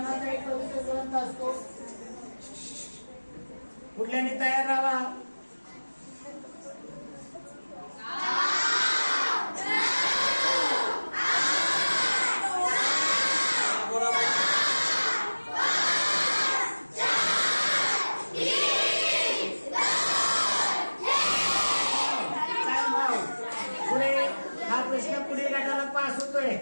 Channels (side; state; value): both; inverted; correlation -1.00